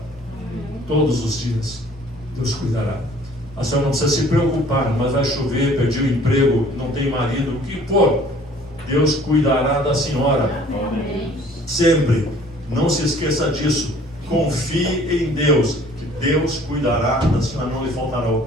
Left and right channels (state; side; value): normal; both; correlation 0.53